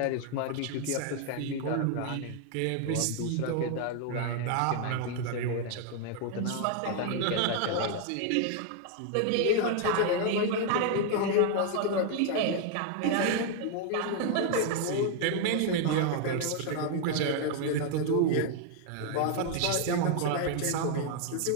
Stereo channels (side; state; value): both; different; correlation 0.00